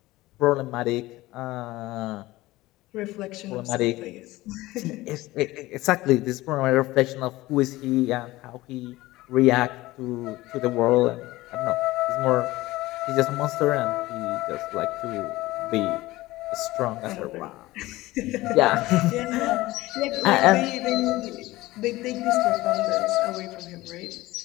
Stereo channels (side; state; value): right; quieter; 18.5 dB